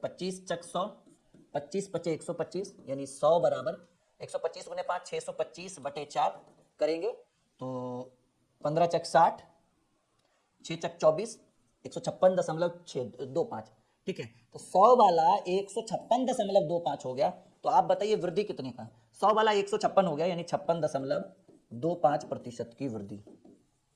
चक 100, 25 पचे 125 यानी 100 बराबर 125 गुने 5 625 बटे 4 करेंगे तो 15 चक 60, 6 चक 24, 156.625। ठीक है, तो 100 वाला 156.25 हो गया। तो आप बताइए वृद्धि कितने का, 100 वाला 156 हो गया यानी 56.25% की वृद्धि,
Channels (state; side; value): identical; both; correlation 1.00